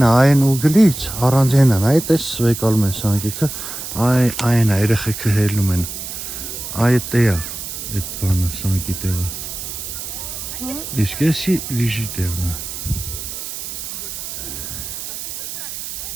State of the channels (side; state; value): right; noise; hiss, 8 dB below the sound